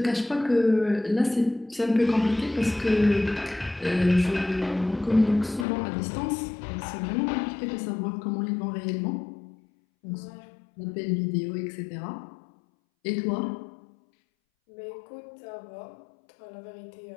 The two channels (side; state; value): right; drops out; at 5.7 s